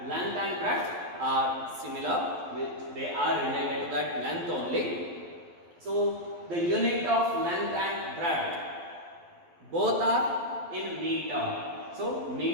Length and breadth are similar, they are related to that length only. So the unit of length and breadth both are in meter. So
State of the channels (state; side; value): late; left; 11 ms